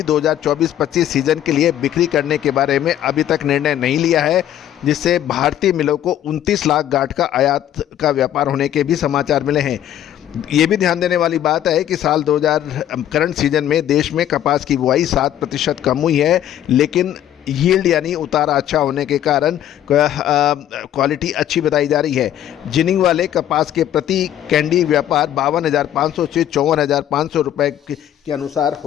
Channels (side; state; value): right; quieter; 11.4 dB